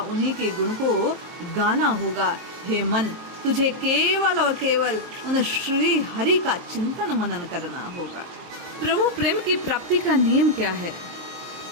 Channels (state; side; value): late; left; 23 ms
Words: उन्हीं के गुण को गाना होगा। हे मन, तुझे केवल और केवल उन श्री हरि का चिंतन मनन करना होगा। प्रभु प्रेम की प्राप्ति का नियम क्या है?